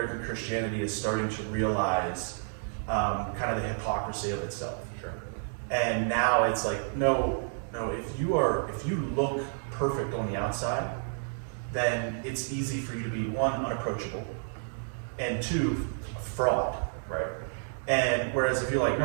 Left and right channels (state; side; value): silent; left; digital silence